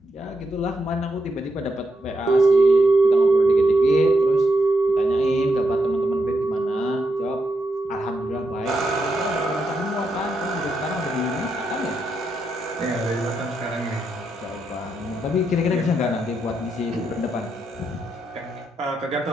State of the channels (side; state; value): both; normal; correlation 0.82